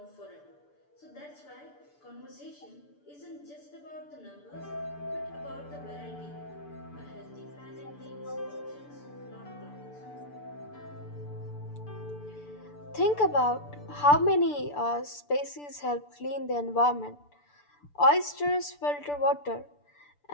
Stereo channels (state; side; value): late; right; 6.9 ms